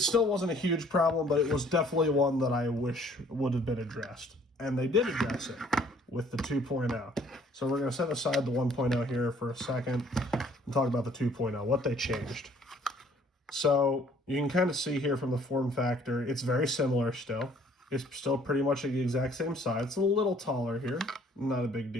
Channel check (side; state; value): both; normal; correlation 0.59